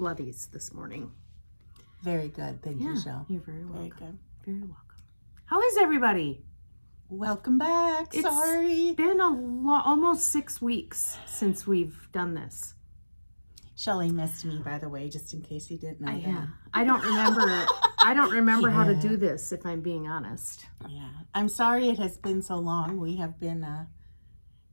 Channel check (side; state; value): both; inverted; correlation -1.00